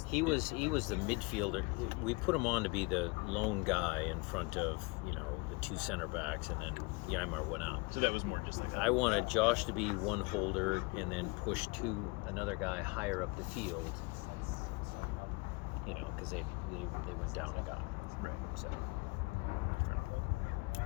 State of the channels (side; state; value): right; quieter; 27.5 dB